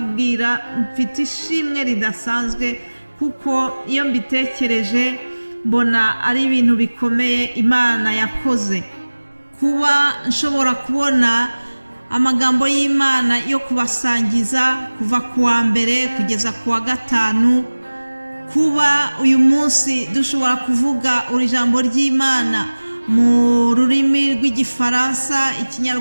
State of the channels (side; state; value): both; inverted; correlation -1.00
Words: mfite ishimwe ridasanzwe kuko iyo mbitekereje mbona ari ibintu bikomeye Imana yakoze. Kuba nshobora kubona amagambo y'Imana yo kubasangiza kuva ku wa mbere kugeza ku wa 5, kuba uyu munsi dushobora kuvuga ijambo ry'Imana mu rurimi rw'Igifaransa,